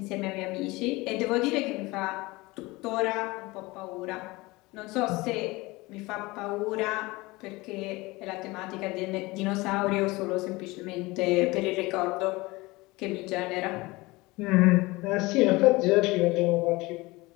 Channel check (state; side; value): quieter; right; 22.1 dB